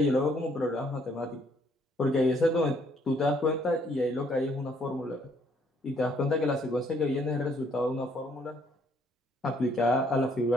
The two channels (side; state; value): both; normal; correlation 0.66